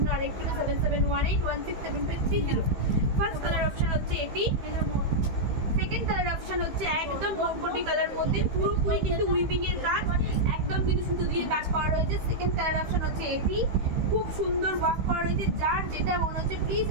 আরেকটি হলো 7718167530। ফার্স্ট কালার অপশন হচ্ছে এটি। সেকেন্ড কালার অপশন হচ্ছে একদম মরকটি কালার মধ্যে, পুরোপুরি কিন্তু উইভিং এর কাজ, একদম কিন্তু সুতো দিয়ে কাজ করা রয়েছে। সেকেন্ড কালার অপশন হচ্ছে এটি, খুব সুন্দর ওয়ার্ক করা রয়েছে। যার যেটা মনে হচ্ছে প্লিজ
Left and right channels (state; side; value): late; left; 15 ms